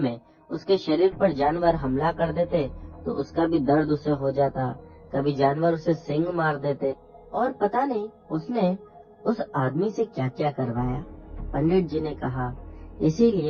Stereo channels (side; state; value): both; identical; correlation 1.00